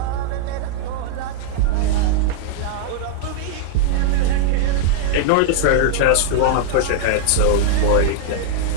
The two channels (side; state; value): both; different; correlation -0.01